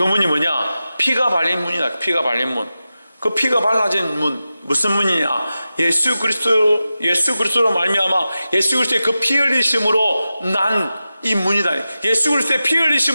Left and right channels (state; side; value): inverted; both; correlation -0.93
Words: 문이 뭐냐? 피가 발린 문이다. 피가 발린 문. 그 피가 발라진 문, 무슨 문이냐? 예수 그리스도로 말미암아 예수 그리스도의 그 피 흘리심으로 난 이 문이다. 예수 그리스도의 피